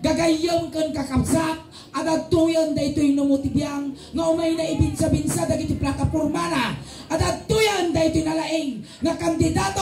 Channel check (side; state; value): both; identical; correlation 1.00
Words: Gagayam kan kakabsat, at ito'y da ito'y numutibiyang nga umay na ibinsa-binsa dagiti plataporma na. At atoyan da ito'y nalaing nga